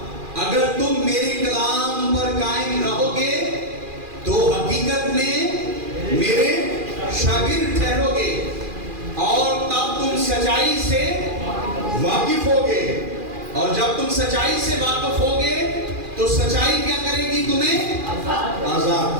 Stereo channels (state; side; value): late; left; 2.4 ms